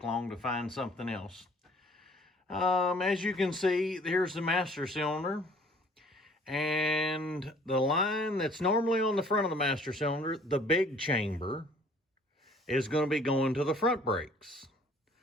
long to find something else. As you can see, here's the master cylinder. And the line that's normally on the front of the master cylinder, the big chamber, is going to be going to the front brakes.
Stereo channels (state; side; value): normal; both; correlation 0.55